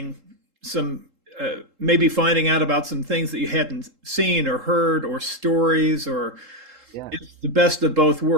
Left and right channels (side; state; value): left; late; 3.7 ms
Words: some maybe finding out about some things that you hadn't seen or heard or stories or yeah, it's the best of both